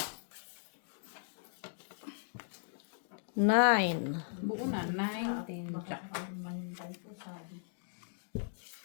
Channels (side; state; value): right; silent; digital silence